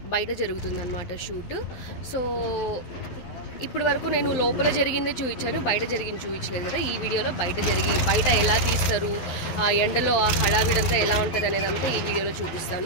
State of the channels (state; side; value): late; right; 12 ms